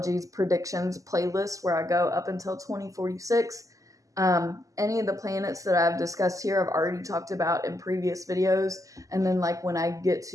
predictions playlist, where I go up until 2046. Any of the planets that I've discussed here I've already talked about in previous videos. And then like when I get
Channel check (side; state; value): left; late; 0.16 ms